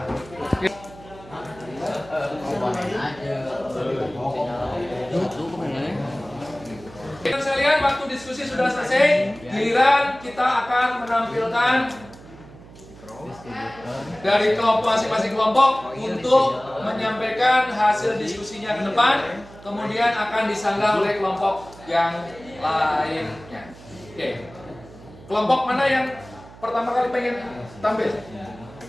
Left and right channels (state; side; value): noise; right; hum, 20 dB below the sound